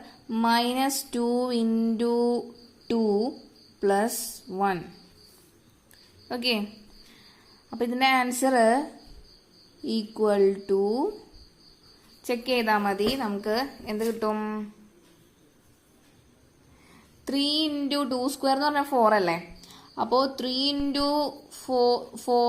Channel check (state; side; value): identical; both; correlation 1.00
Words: minus 2 into 2 plus 1. Okay. അപ്പോൾ ഇതിൻ്റെ ആൻസർ ഈക്വൽ ടു, ചെക്ക് ചെയ്താൽ മതി, നമുക്ക് എന്ത് കിട്ടും? 3 into 2 square എന്ന് പറഞ്ഞാൽ 4 അല്ലേ? അപ്പോൾ 3 into